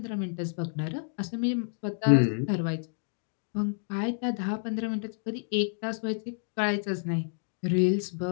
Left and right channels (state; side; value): silent; right; digital silence